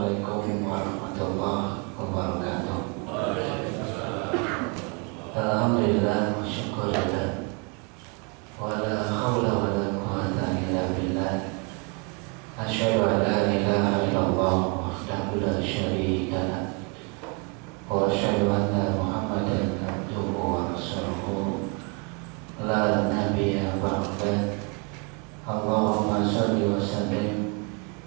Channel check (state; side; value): quieter; left; 33.9 dB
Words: warahmatullahi wabarakatuh. Alhamdulillah wa syukurillah wa la hawla wa la quwwata illa billah. Asyhadu an la ilaha illallah wahdahu la syarika lah wa asyhadu anna Muhammadan abduhu wa rasuluhu la nabiyya ba'dah. Allahumma shalli wa sallim